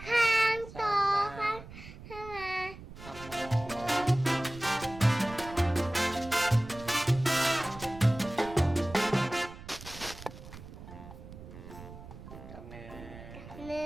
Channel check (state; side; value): noise; right; rumble, 15 dB below the sound